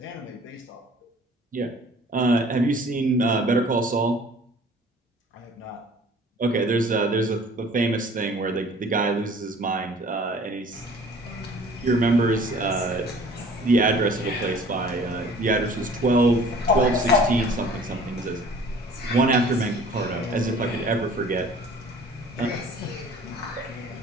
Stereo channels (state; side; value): normal; both; correlation 0.50